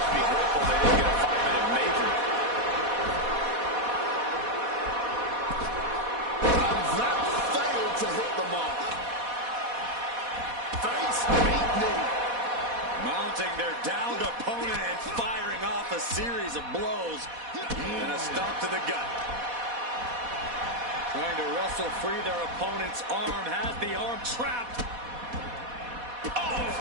be grateful they didn't get a 5-minute major. To hit the mark. Face beat knee. Mounting their downed opponent and firing off a series of blows. And a stomp to the gut. Trying to wrestle free their opponent's arm. Has the arm trapped. Oh,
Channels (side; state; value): left; late; 4.1 ms